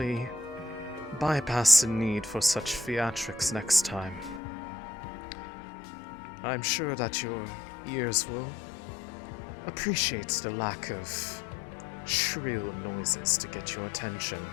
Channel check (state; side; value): drops out; right; at 4.4 s